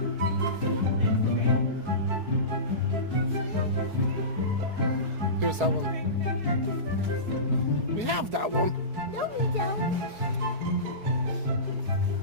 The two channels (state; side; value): late; left; 4.7 ms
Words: Who's that one? We have that one. No, we don't.